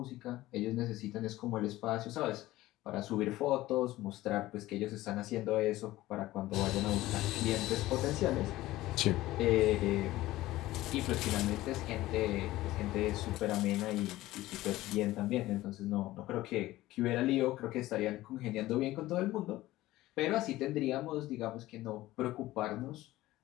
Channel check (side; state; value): right; quieter; 16.8 dB